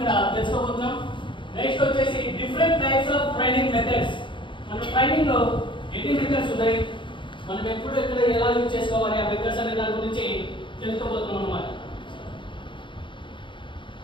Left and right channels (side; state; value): right; late; 0.24 ms